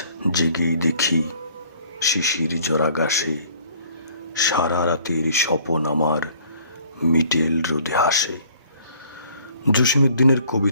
জেগেই দেখি শিশির জরা গাছে সারা রাতের স্বপন আমার মিটেল রোদে হাসে। জসীমউদ্দিনের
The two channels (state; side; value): inverted; both; correlation -0.57